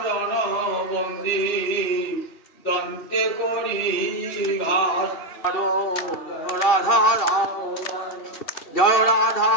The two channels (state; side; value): late; right; 2.6 ms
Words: চরণ বন্দি দন্তে করি ঘাস। রাধা দামোদর জয় রাধা